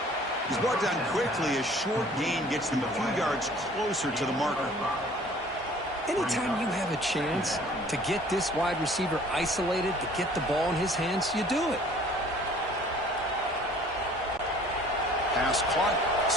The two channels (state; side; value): normal; both; correlation 0.52